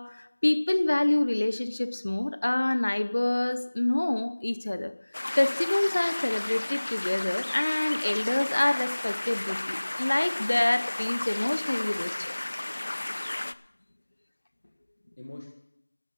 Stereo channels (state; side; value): inverted; both; correlation -1.00